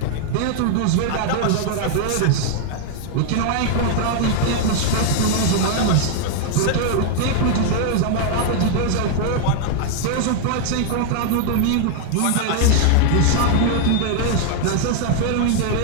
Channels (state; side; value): different; both; correlation 0.00